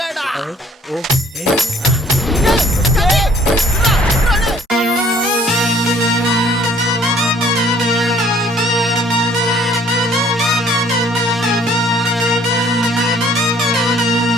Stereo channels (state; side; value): normal; both; correlation 0.58